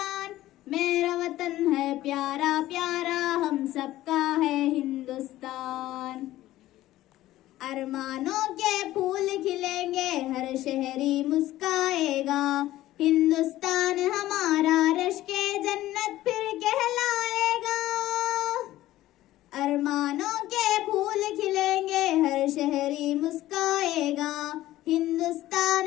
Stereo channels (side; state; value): right; quieter; 15.3 dB